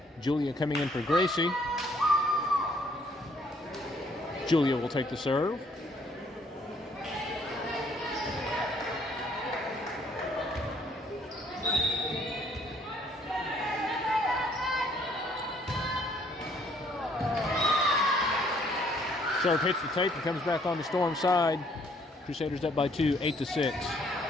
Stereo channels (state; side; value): normal; both; correlation 0.64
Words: Julia coming in for Gracie. Julia will take the serve. Serve hits the tape and comes back on the Storm side. Crusaders up by 2, 8-6.